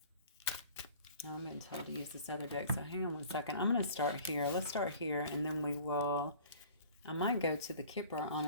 Now I'm being told to use this other deck, so hang on one second. I'm going to start here. Let's start here, and then we will... I might go to the Kipper,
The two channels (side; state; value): both; inverted; correlation -0.47